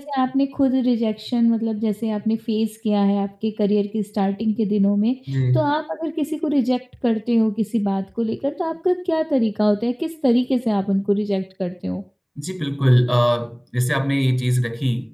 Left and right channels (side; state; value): both; identical; correlation 1.00